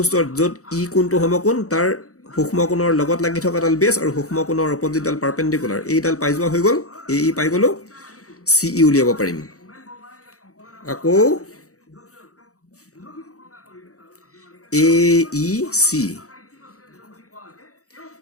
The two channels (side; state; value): right; late; 0.65 ms